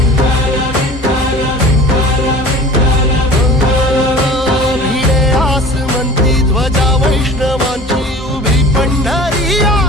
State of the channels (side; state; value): both; normal; correlation 0.41